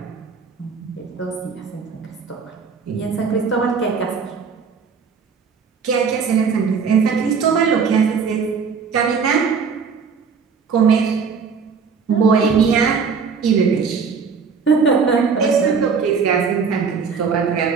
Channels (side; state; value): left; quieter; 5.7 dB